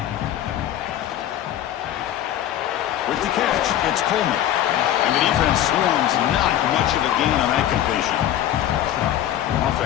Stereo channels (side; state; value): right; quieter; 11.8 dB